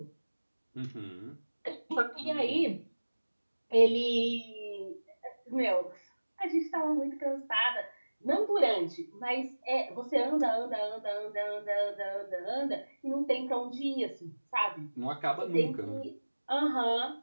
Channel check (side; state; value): both; inverted; correlation -1.00